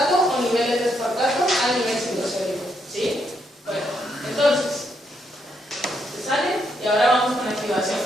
o niveles de aspartato a nivel citosólico. ¿Sí? Bueno, entonces, ¿se sale? Y ahora vamos con la activación.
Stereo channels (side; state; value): both; normal; correlation 0.77